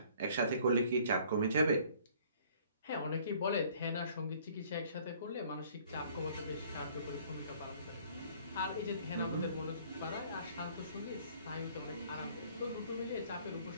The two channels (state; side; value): inverted; both; correlation -0.57